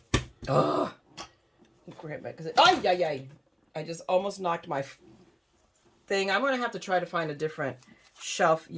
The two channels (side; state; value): both; identical; correlation 1.00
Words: grab it, because I just almost knocked my thing. I'm going to have to try to find a different shelf